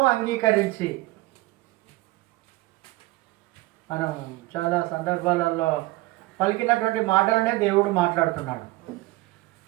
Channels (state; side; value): quieter; left; 20.0 dB